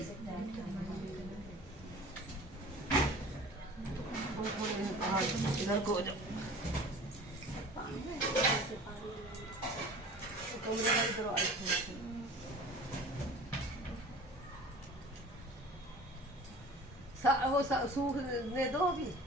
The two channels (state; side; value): normal; both; correlation 0.42